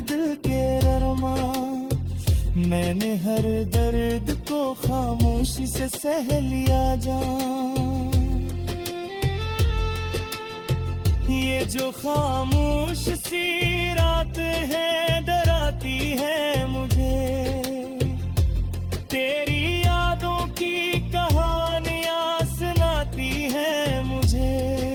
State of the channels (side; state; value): both; identical; correlation 1.00